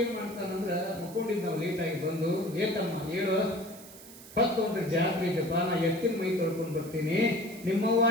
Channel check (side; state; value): right; noise; hiss, 18 dB below the sound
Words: ಏನು ಮಾಡ್ತಾನಂದ್ರೆ, ಮುಕ್ಕೊಂಡಿದ್ದು ನಾವು ಲೇಟಾಗಿ ಬಂದು, ಏತಮ್ಮ ಹೇಳು, ಹೊತ್ತೊಂದ್ರೆ ಜಾತ್ರೆ ಇದೆಪ್ಪ, ನಾ ಎತ್ತಿನ ಮೈ ತೊಳ್ಕೊಂಡು ಬರ್ತೀನಿ. ನಿಮ್ಮವ್ವ